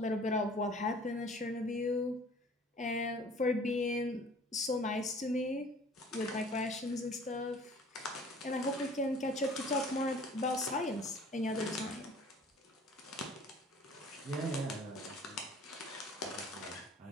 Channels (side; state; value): both; normal; correlation 0.50